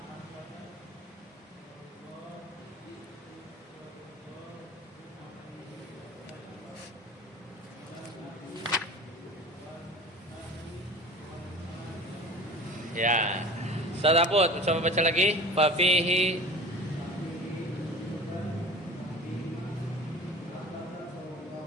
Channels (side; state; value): both; normal; correlation 0.39